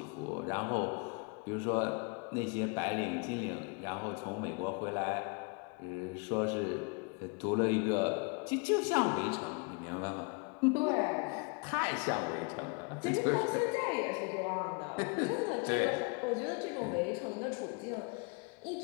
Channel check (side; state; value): right; quieter; 33.9 dB